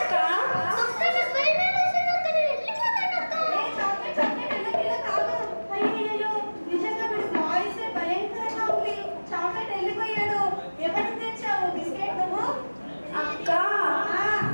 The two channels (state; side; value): inverted; both; correlation -1.00